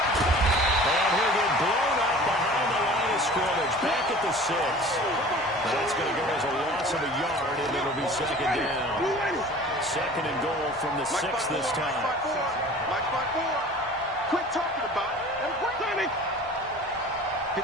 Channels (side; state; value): both; normal; correlation 0.43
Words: And he'll get blown up behind the line of scrimmage. Back at the 6. That's going to go as a loss of a yard, and it'll be 2nd down. 2nd and goal from the 6 this time. Quit talking about it. And we're 54.